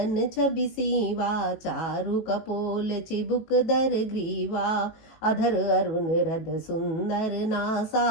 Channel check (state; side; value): late; right; 18 ms